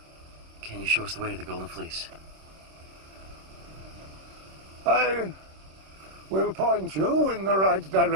Can you show us the way to the Golden Fleece? I will point you in the right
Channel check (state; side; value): late; left; 26 ms